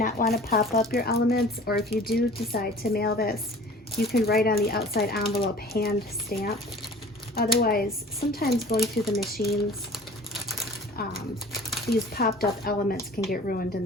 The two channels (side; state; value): both; normal; correlation 0.44